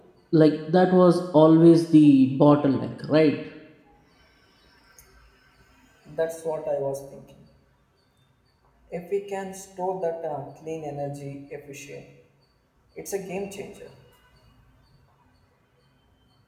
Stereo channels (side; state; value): both; identical; correlation 1.00